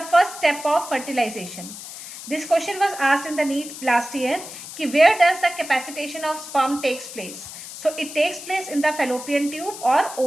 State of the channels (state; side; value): noise; left; hiss, 12 dB below the sound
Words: first step of fertilization. This question was asked in the NEET last year. Where does the capacitation of sperm takes place? So it takes place in the fallopian tube or